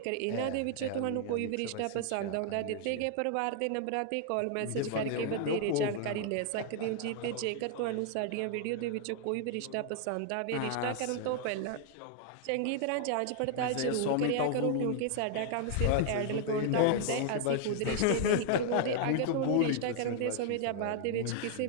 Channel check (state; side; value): different; both; correlation 0.00